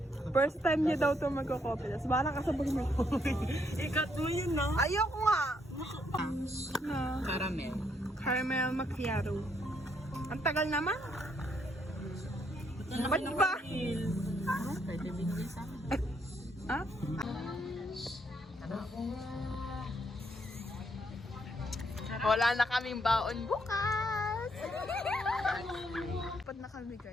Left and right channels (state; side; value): normal; both; correlation 0.73